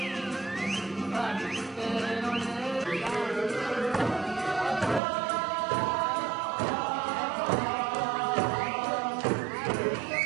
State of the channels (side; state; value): left; drops out; at 5.0 s